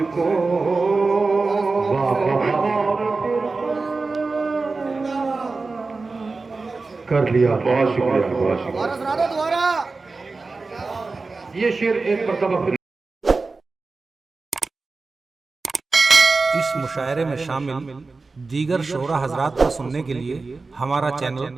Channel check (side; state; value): left; quieter; 3.9 dB